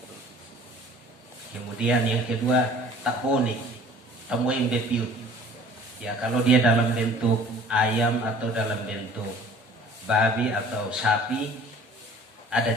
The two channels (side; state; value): both; normal; correlation 0.50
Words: Kemudian yang kedua, tak poni, temuin bepiut. Ya, kalau dia dalam bentuk ayam atau dalam bentuk babi atau sapi, ada